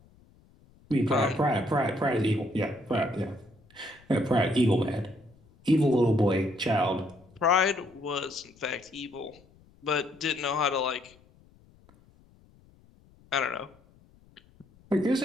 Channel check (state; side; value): noise; left; rumble, 29 dB below the sound